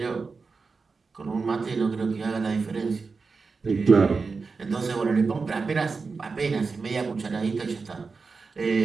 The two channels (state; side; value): quieter; left; 4.5 dB